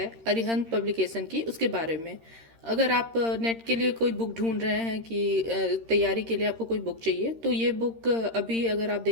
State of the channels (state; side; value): late; left; 13 ms